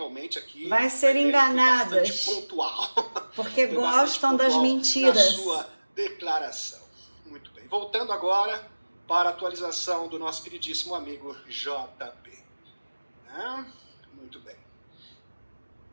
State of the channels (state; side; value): inverted; both; correlation -1.00